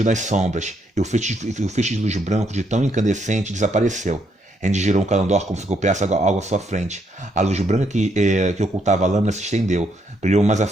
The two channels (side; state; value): both; normal; correlation 0.74